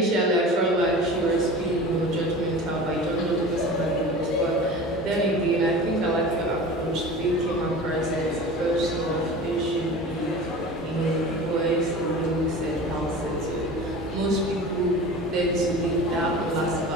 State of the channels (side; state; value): both; normal; correlation 0.36